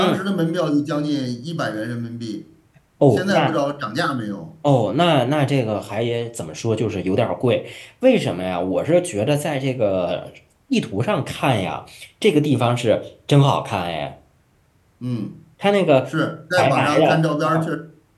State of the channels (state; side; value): identical; both; correlation 1.00